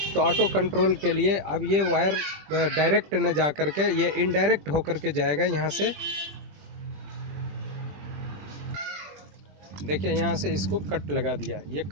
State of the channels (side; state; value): left; late; 20 ms